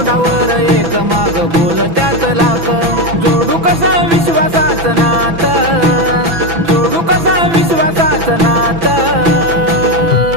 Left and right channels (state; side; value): late; left; 6.0 ms